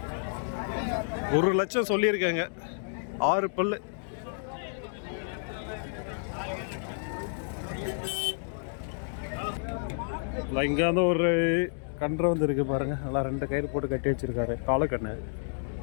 1 லட்சம் சொல்லியிருக்காங்க. 6 பல்லு. இங்கே வந்து ஒரு கன்று வந்து இருக்கு பாருங்க. நல்லா 2 கயிறு போட்டு கட்டி வச்சிருக்காரு. காலக்கண்ணு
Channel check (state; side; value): silent; right; digital silence